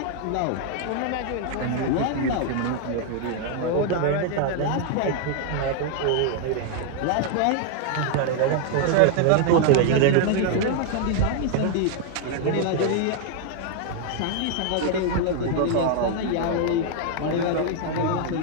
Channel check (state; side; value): different; both; correlation 0.00